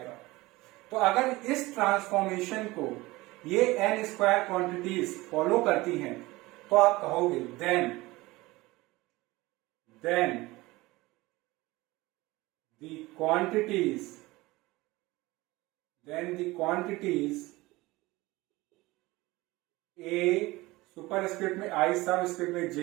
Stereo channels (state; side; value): quieter; left; 20.6 dB